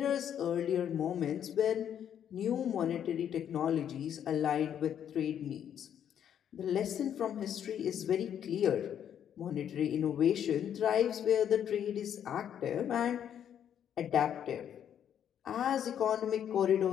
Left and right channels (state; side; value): quieter; right; 9.3 dB